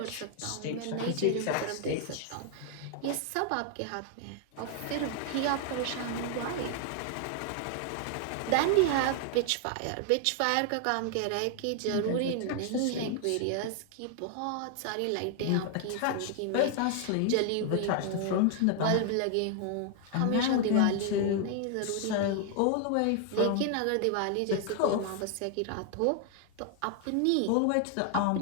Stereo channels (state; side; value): different; both; correlation 0.00